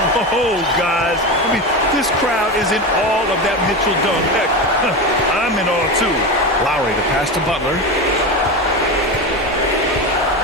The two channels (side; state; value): both; normal; correlation 0.21